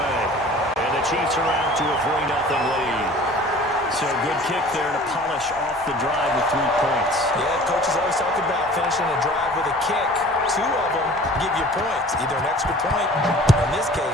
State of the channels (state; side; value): normal; both; correlation 0.46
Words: And the Chiefs are out to a 3-0 lead. So good kick there to polish off the drive with 3 points. Yeah, coaches always talk about finishing a drive with a kick. 2 of them give you points, either an extra point, or in this